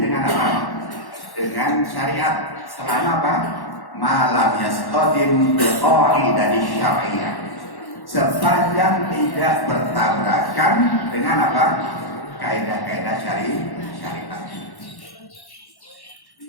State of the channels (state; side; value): late; right; 1.1 ms